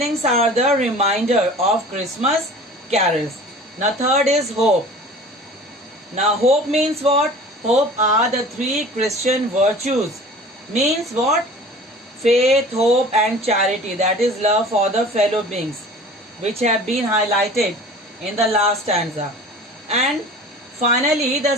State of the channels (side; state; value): both; normal; correlation 0.43